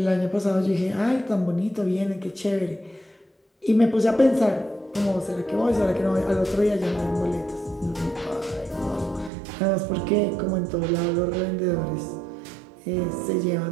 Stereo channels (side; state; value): left; drops out; at 9.3 s